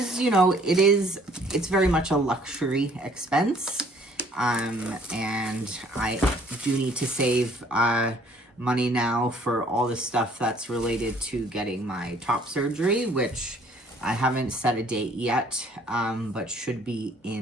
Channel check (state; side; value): normal; both; correlation 0.59